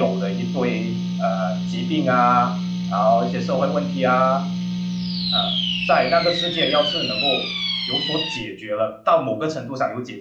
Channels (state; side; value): identical; both; correlation 1.00